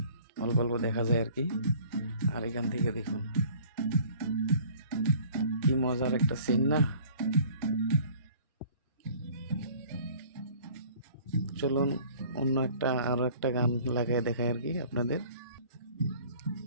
অল্প অল্প দেখা যায় আর কি। আর এখান থেকে দেখুন কি মজার একটা সিন না। চলুন অন্য একটা আরো একটা গান লাগাই দেখাই আর কি আপনাদের।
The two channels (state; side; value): inverted; both; correlation -0.51